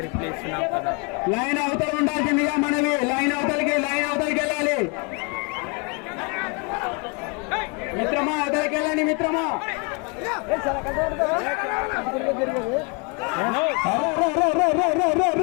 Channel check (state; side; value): quieter; right; 32.6 dB